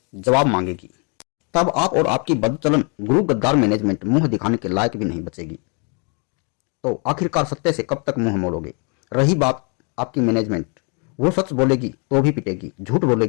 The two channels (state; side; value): quieter; right; 35.6 dB